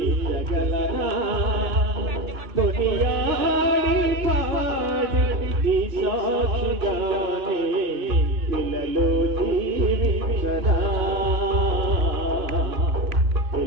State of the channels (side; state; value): left; late; 2.6 ms